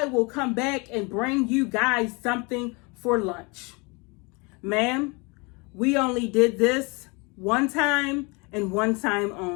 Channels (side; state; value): right; quieter; 28.9 dB